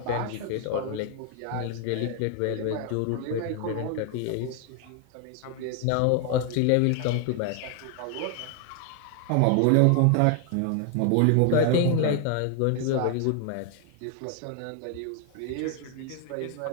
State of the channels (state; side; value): different; both; correlation 0.00